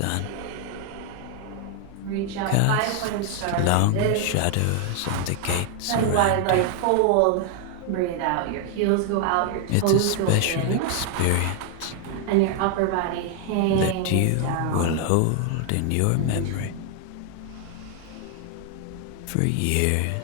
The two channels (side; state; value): both; different; correlation 0.00